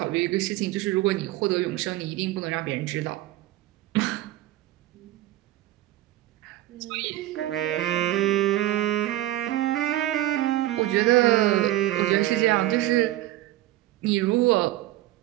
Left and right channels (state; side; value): quieter; left; 15.4 dB